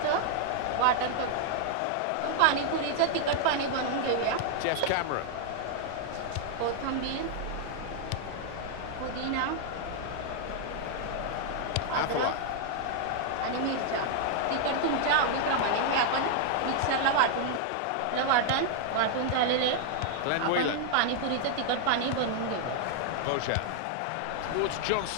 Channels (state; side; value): different; both; correlation 0.00